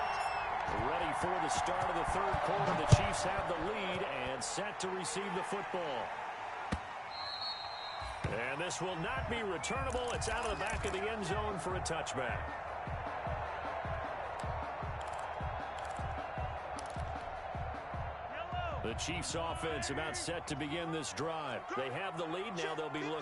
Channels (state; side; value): identical; both; correlation 1.00